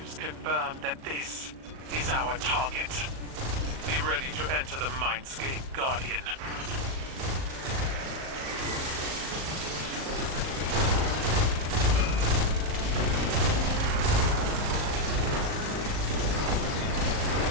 confirmed that this is our target. Be ready to enter the Mindscape, Guardian.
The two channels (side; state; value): left; late; 38 ms